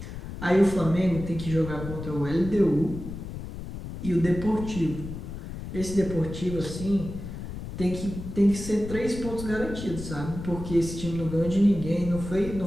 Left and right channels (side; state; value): left; noise; rumble, 9 dB below the sound